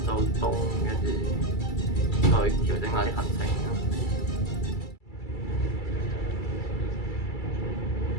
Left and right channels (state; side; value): late; right; 2.3 ms